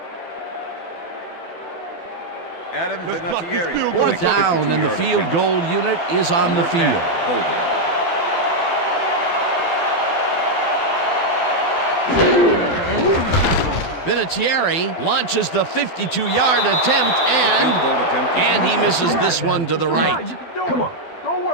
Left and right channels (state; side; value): late; right; 12 ms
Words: Adam Vinatieri. 4th down, and the field goal unit is on the field. Holding. Vinatieri launches the 52-yard attempt, Field goal attempt. and he misses this one to the right. Come on. Don't worry